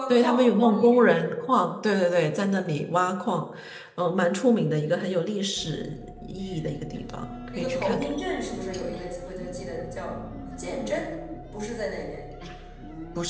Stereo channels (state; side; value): identical; both; correlation 1.00